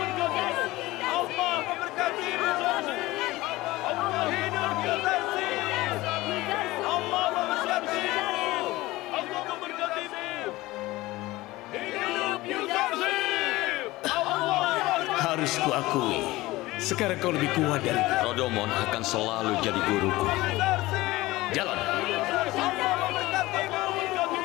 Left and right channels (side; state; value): right; quieter; 19.0 dB